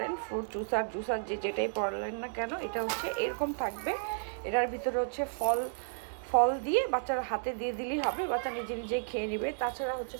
ফ্রুট জুসার যেটাই পড়লেন না কেন, এটা হচ্ছে এরকম থাকবে। এটার ভিতরে হচ্ছে ফল দিয়ে বাচ্চারা হাতে দিয়ে দিলেই হবে, বাচ্চা নিজে নিজেই খেয়ে নেবে। তাছাড়া হচ্ছে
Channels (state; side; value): silent; left; digital silence